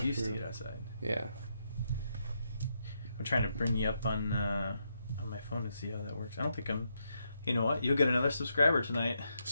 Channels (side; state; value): both; inverted; correlation -0.81